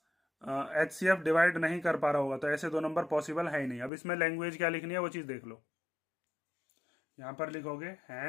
HCF डिवाइड नहीं कर पा रहा होगा तो ऐसे दो नंबर पॉसिबल है ही नहीं। अब इसमें लैंग्वेज क्या लिखनी है वो चीज़ देख लो, यहाँ पर लिखोगे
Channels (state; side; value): drops out; right; at 3.9 s